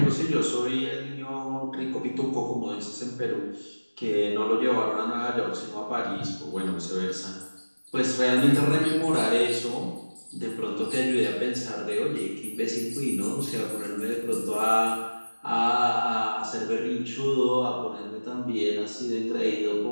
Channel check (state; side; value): inverted; both; correlation -1.00